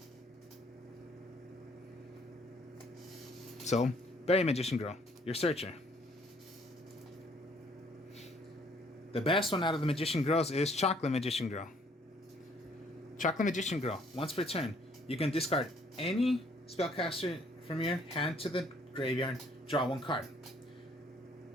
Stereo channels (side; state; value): both; normal; correlation 0.63